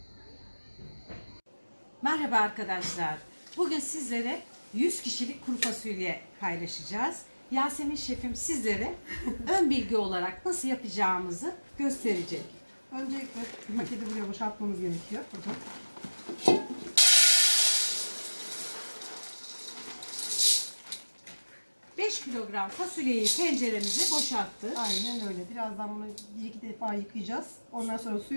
Merhaba arkadaşlar. Bugün sizlere 100 kişilik kuru fasulye paylaşacağız. Yasemin şefim sizlere ön bilgi olarak nasıl yapacağımızı gösterecek. Öncelikle paketi buraya boşaltmamız gerekiyor. Burada. 5 kilogram fasulyeyi tenceremize boşalttık. Aynen öyle. Birazdan bunu bir iki defa yıkayacağız. Ondan sonra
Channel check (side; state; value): both; inverted; correlation -1.00